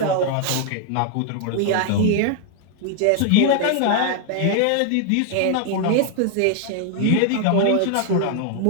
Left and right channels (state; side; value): different; both; correlation 0.00